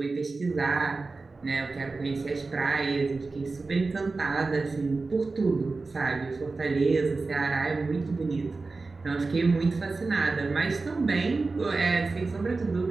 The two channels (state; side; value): quieter; left; 3.8 dB